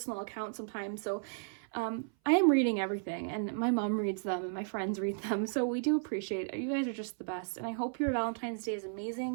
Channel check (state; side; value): silent; left; 55 dB below the other